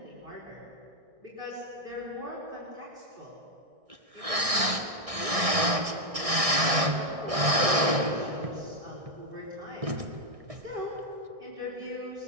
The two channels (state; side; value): late; left; 1.6 ms